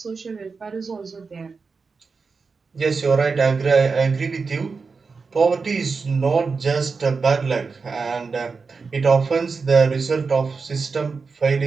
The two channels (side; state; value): left; quieter; 4.7 dB